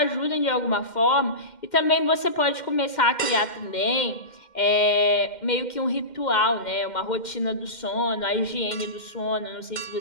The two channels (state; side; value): late; right; 2.1 ms